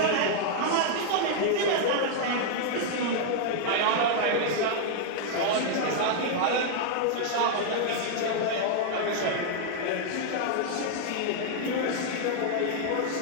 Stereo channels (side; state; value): both; different; correlation 0.00